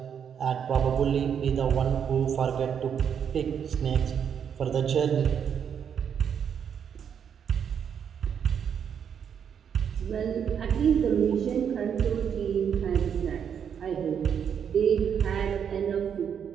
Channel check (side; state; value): left; quieter; 7.9 dB